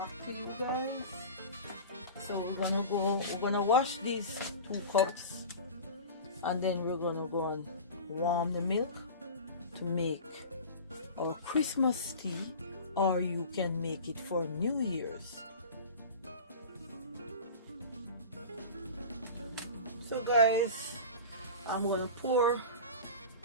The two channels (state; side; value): inverted; both; correlation -0.35